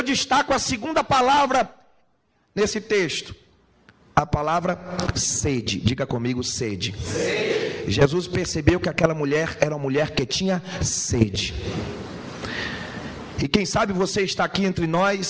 destaco a segunda palavra nesse texto, a palavra sede. Diga comigo: sede. Sede. Jesus percebeu que aquela mulher era uma mulher que tinha sede. E quem sabe você está aqui entre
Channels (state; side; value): identical; both; correlation 1.00